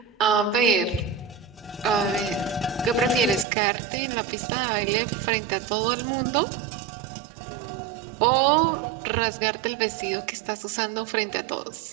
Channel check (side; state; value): left; drops out; at 3.5 s